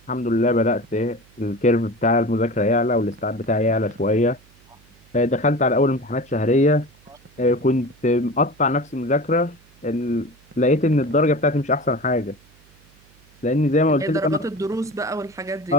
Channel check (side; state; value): right; noise; hum, 29 dB below the sound